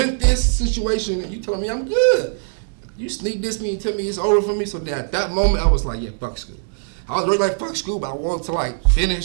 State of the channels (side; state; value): left; silent; digital silence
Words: this situation, and you telling me I'm good. You sneak this me and tell me it's over for me. So at that moment, I was like, yeah, fuck school. I was really like, fuck school, but I wanted to like